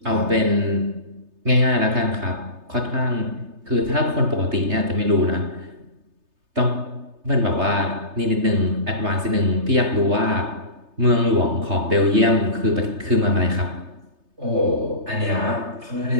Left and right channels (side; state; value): left; late; 3.3 ms